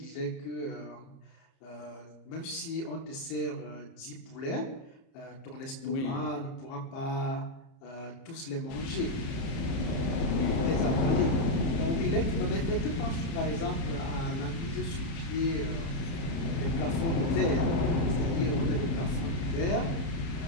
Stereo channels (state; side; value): late; right; 30 ms